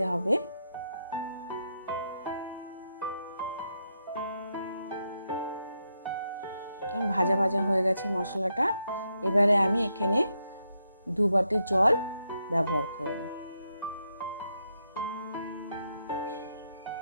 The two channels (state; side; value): inverted; both; correlation -0.81